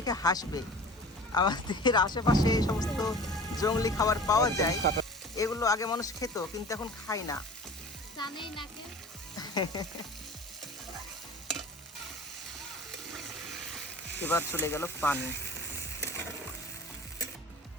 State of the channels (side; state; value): both; normal; correlation 0.40